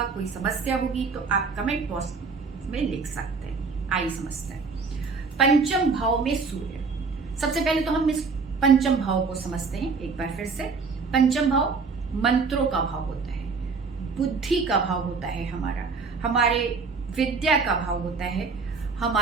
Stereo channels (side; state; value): left; quieter; 4.7 dB